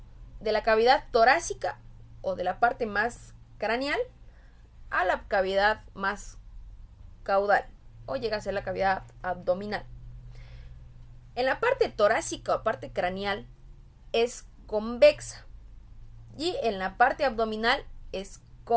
de la cavidad torácica o de la parte más craneal a la cavidad más caudal, o llega a ser la cavidad abdominal. En la parte torácica o parte craneal es convexa y en la parte abdominal es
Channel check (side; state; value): both; identical; correlation 1.00